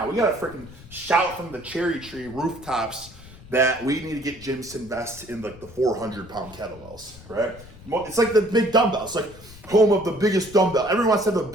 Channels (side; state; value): left; noise; rumble, 19 dB below the sound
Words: we got to freaking shout from the cherry tree rooftops that we need to get gyms to invest in like the 400-pound kettlebells, right? It's like the big dumbbells. It's like home of the biggest dumbbell. Everyone wants to have the